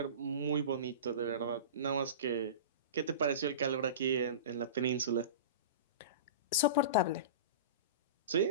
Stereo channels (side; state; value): both; inverted; correlation -0.31